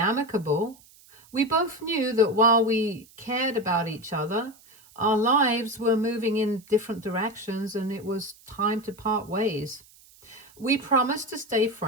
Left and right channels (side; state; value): right; noise; hiss, 26 dB below the sound